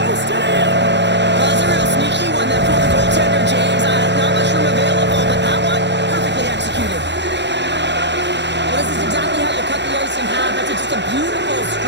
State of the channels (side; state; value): left; late; 0.51 ms